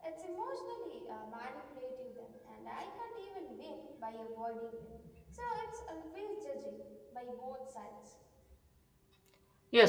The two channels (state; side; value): identical; both; correlation 1.00